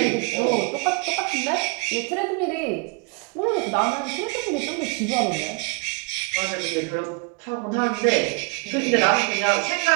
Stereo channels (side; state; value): left; quieter; 29.4 dB